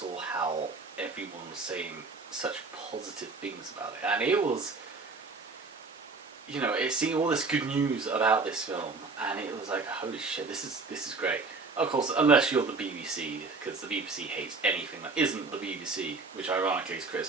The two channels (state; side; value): quieter; left; 4.1 dB